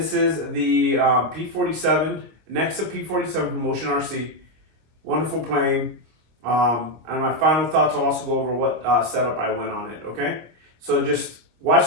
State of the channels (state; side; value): late; left; 25 ms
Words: is the P-47 Nexa P-47 from Bolin RC. Wonderful plane. And my final thoughts, I'll also go over what setup I went on it, okay? So just